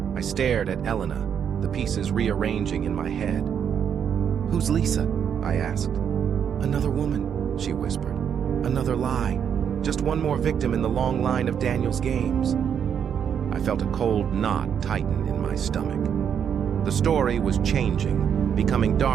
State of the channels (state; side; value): quieter; left; 8.1 dB